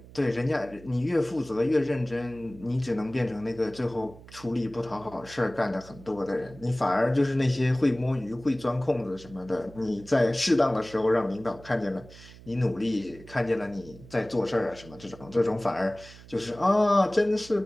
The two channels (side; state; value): right; noise; hum, 19 dB below the sound